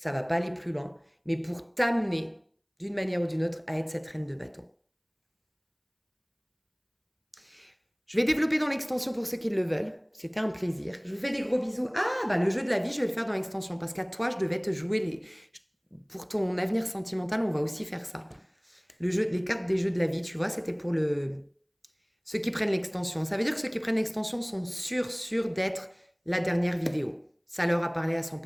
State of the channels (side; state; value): both; identical; correlation 1.00